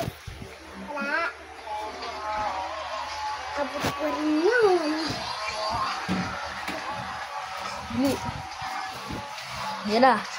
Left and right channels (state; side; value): identical; both; correlation 1.00